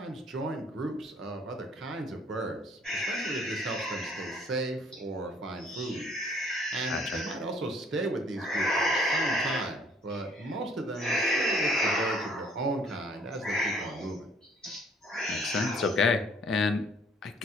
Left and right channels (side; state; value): both; normal; correlation 0.60